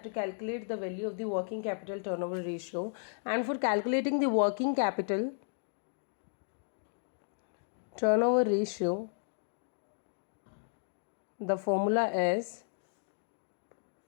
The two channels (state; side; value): silent; right; digital silence